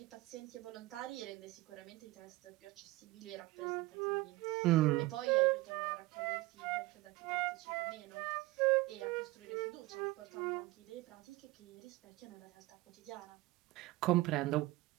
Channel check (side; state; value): left; quieter; 19.7 dB